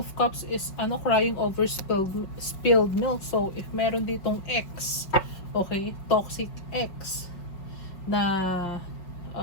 Cups is crying over spilled milk. So, if meron ditong ex, okay, toxic ex na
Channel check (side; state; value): right; late; 5.4 ms